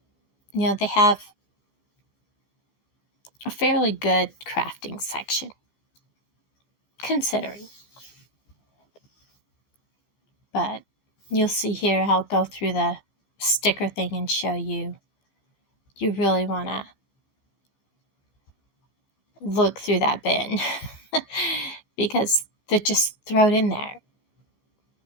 they have a fairly good crafting section, considering. But you'll see here, I'll go through the sticker thing and show you. You really want to look through that bin because they're just thrown in there.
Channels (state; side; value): late; right; 15 ms